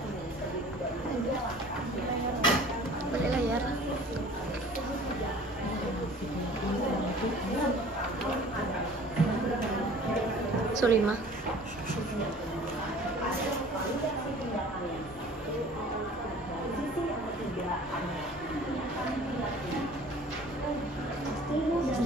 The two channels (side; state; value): both; normal; correlation 0.47